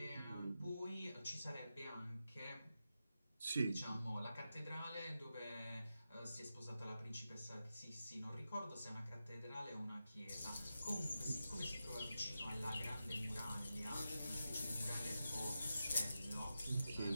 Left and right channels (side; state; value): both; inverted; correlation -0.90